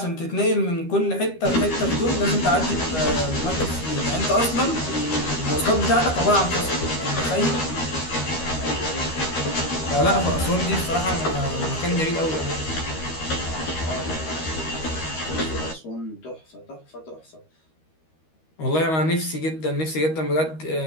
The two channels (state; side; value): late; right; 13 ms